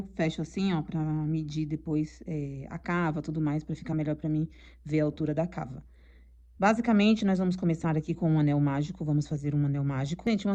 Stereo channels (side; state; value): both; identical; correlation 1.00